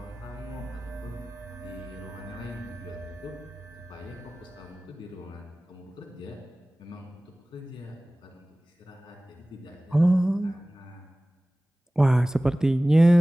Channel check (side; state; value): both; normal; correlation 0.98